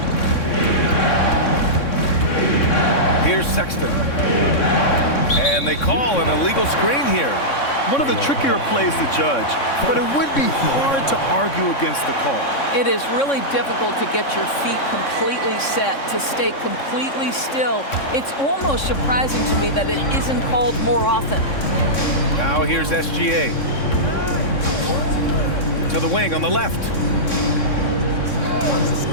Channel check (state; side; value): late; right; 3.6 ms